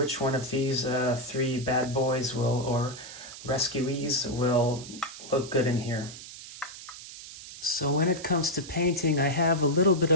one of these 3 bad boys or rescuees will look good in here. So when it comes to painting, I have a little bit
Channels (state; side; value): noise; right; hiss, 14 dB below the sound